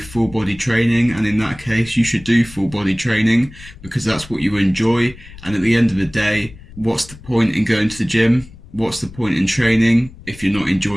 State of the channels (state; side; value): noise; left; rumble, 19 dB below the sound